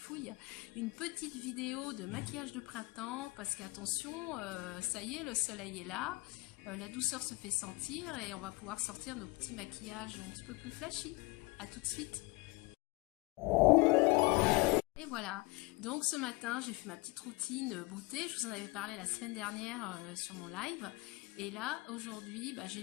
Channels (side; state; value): right; quieter; 24.6 dB